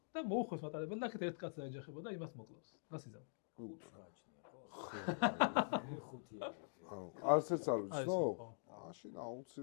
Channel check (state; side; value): silent; right; digital silence